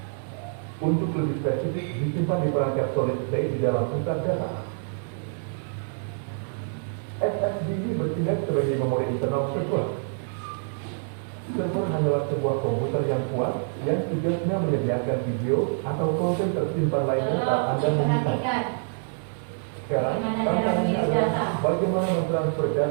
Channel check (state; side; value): silent; left; 61 dB below the other